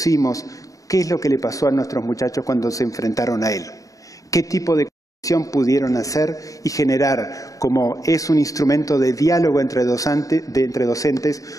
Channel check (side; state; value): right; late; 0.16 ms